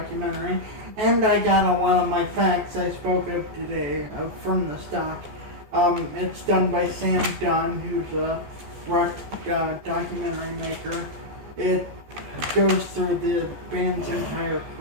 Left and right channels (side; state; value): left; late; 14 ms